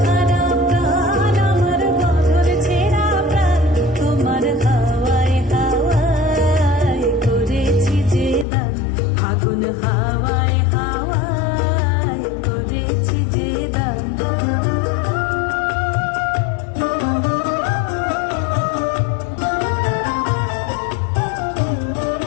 হারা প্রাণ, আমার বাঁধন ছেঁড়া প্রাণ, তোমার হাওয়ায় হাওয়ায় করেছি যে দান। ফাগুন হাওয়ায় হাওয়ায় করেছি যে দান।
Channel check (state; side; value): drops out; right; at 8.5 s